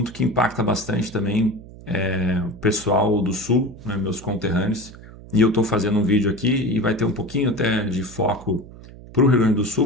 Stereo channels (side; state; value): right; noise; hum, 18 dB below the sound